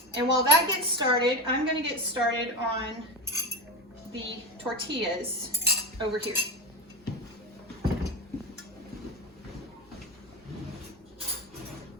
And while that gets started, I'm gonna get started on the tortillas over here.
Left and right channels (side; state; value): both; normal; correlation 0.21